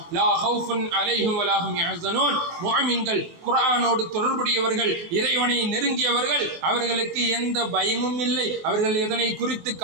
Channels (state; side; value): late; left; 24 ms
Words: லா ஹவுஃபுன் அலைஹிம் வலா ஹும் யஹ்ஸனூன். முஃமின்கள், குர்ஆனோடு தொடர்புடையவர்கள், இறைவனை நெருங்கியவர்கள், அவர்களுக்கு எந்த பயமும் இல்லை, அவர்கள் எதனை குறித்து